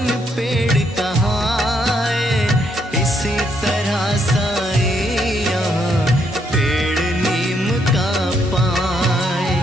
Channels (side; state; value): both; normal; correlation 0.74